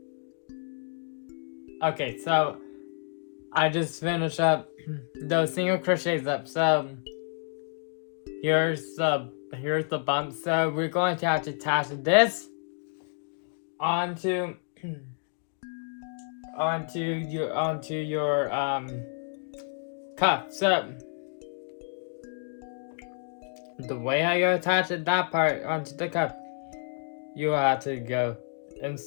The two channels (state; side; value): silent; right; digital silence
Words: so I just finished up those single crochets up. So here's the bump. So we're going to have to attach this onto your cuff. So the way how you attach that part onto the cuff, you have to go